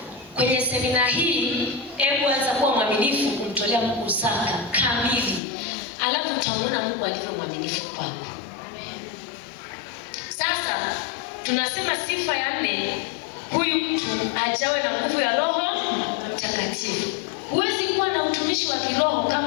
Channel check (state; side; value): drops out; right; at 5.4 s